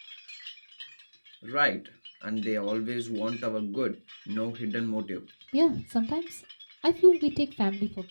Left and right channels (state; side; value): inverted; both; correlation -1.00